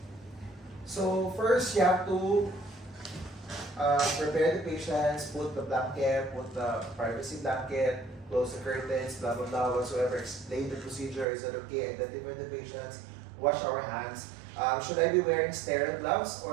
So first, you have to prepare the patients, put the blanket, put the privacy blanket, close the curtains, blah blah blah, whatsoever. Explain the procedure. Is that okay? Identify the patients. Wash our hands. Should I be wearing sterile gloves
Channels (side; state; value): left; drops out; at 11.2 s